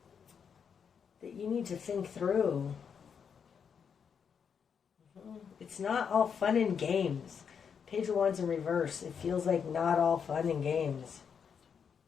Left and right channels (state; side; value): quieter; right; 6.9 dB